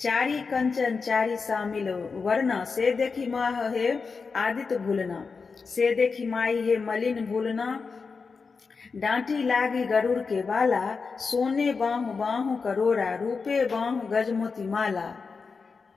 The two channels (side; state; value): right; quieter; 4.9 dB